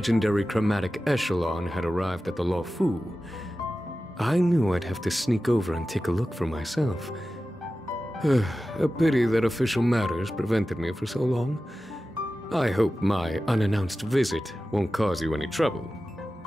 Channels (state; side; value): normal; both; correlation 0.94